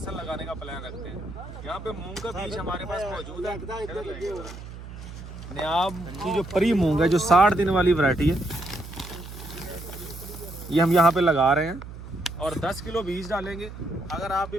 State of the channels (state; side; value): noise; right; hum, 12 dB below the sound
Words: लगाने का प्लान रखते हैं। यहाँ पे मूंग का बीज हमारे पास मौजूद है। नियाब की जो परी मूंग है, जो 60 दिन वाली वैरायटी है, ये हम यहाँ पे लगा रहे हैं और 10 किलो बीज डालेंगे। अगर आप